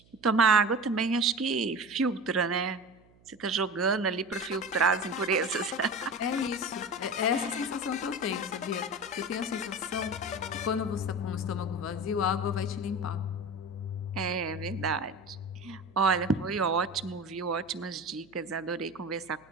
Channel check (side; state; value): right; noise; hum, 29 dB below the sound